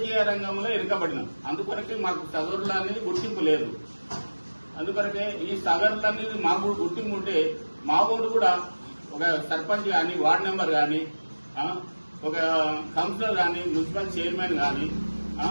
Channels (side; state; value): both; inverted; correlation -1.00